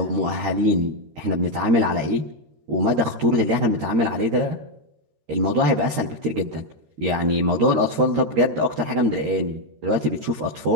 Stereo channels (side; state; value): left; late; 13 ms